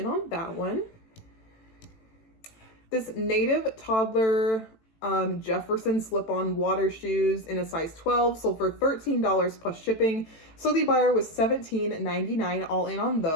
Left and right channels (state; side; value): late; right; 18 ms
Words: on that one. This Native Toddler Jefferson slip-on water shoes in a size 12 sold for $13 plus shipping. So the buyer was $17.99 all in on